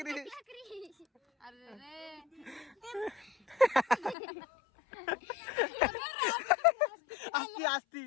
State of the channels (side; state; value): right; drops out; at 4.2 s